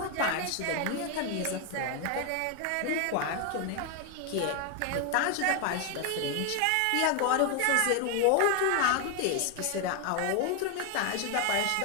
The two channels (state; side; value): different; both; correlation 0.01